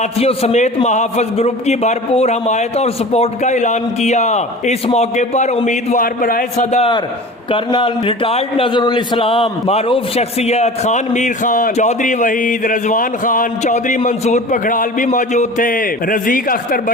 समेत महाफिज ग्रुप की भरपूर हमायत और सपोर्ट का ऐलान किया। इस मौके पर उम्मीदवार बराए सदर कर्नल रिटायर्ड नजरुल इस्लाम, मारूफ शख्सियत खान मीर खान, चौधरी वहीद, रजवान खान, चौधरी मंसूर पखड़ाल भी मौजूद थे। रजीक अख्तर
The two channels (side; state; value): both; normal; correlation 0.38